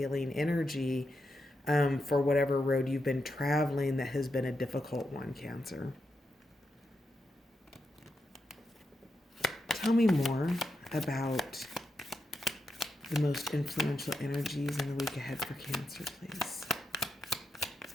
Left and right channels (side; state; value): both; normal; correlation 0.85